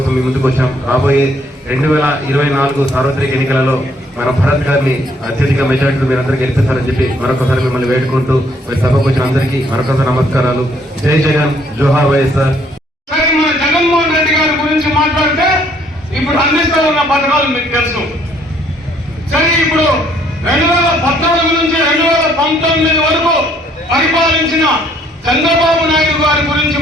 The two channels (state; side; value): normal; both; correlation 0.65